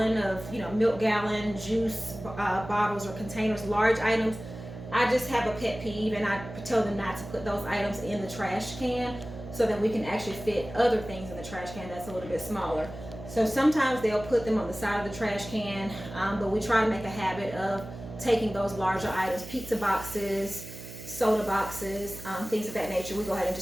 of, milk gallon, juice bottles or containers, large items. I just have a pet peeve, and I tell them not to put those items in the trash can, so that we can actually fit other things in the trash can that's a little bit smaller. So sometimes they'll put them on the side of the trash can, but we try to make a habit of taking those larger items, pizza boxes, soda boxes, things of that nature. We go ahead and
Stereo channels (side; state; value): right; noise; hum, 12 dB below the sound